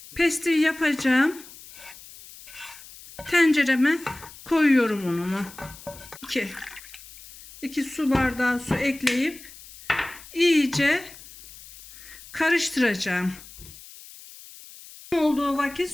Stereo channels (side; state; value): left; noise; hiss, 18 dB below the sound